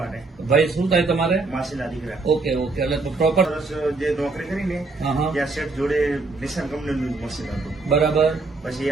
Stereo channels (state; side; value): quieter; left; 3.6 dB